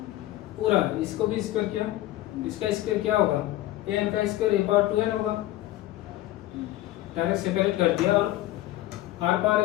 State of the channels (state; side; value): quieter; right; 15.4 dB